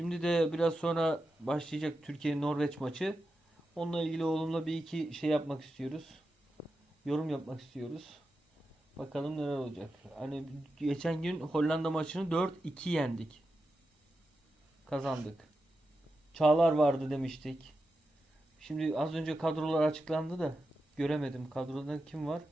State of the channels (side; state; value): both; normal; correlation 0.89